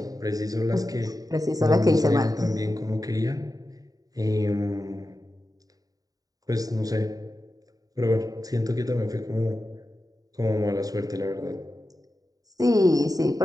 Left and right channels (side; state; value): left; late; 0.18 ms